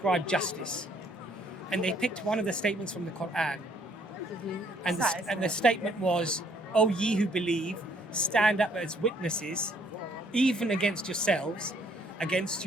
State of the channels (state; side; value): normal; both; correlation 0.65